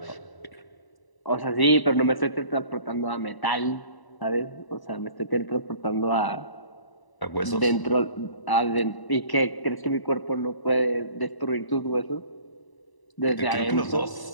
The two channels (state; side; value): late; right; 1.0 ms